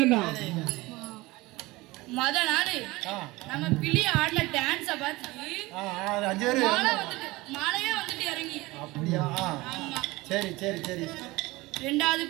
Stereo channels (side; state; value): left; quieter; 21.0 dB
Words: மொத நாள் ஆ நம்ம பிள்ளை ஆடின டான்ஸ பார்த்துட்டு ஆ 5 பேர் மாலையே வந்துட்டு இறங்கி. அப்படியா ஆமா. சரி சரி சரி 2வது